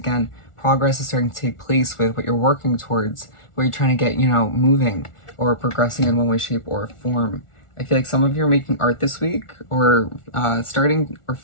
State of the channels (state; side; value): late; right; 1.4 ms